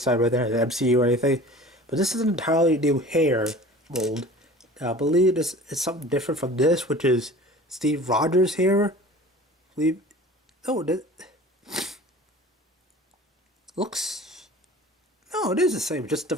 side right there, the MCU or anything. But this is an entirely new hair mold. Now, I believe this is something different from this, which is Steve Rogers' hair. I believe. Oh, it looks. No, it is the same, just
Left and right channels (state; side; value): normal; both; correlation 0.42